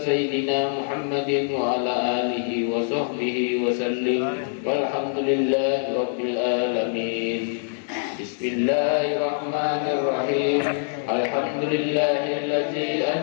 سيدنا محمد وعلى آله وصحبه وسلم والحمد لله رب العالمين. بسم الله الرحمن الرحيم. الحمد لله الذي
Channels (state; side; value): silent; right; 59 dB below the other